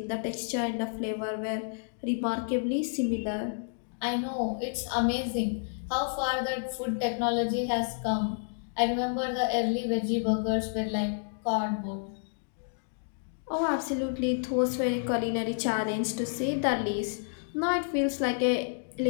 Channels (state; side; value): silent; right; digital silence